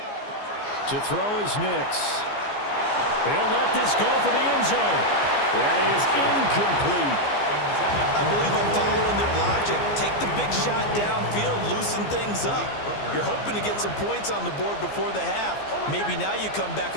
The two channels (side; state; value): right; late; 15 ms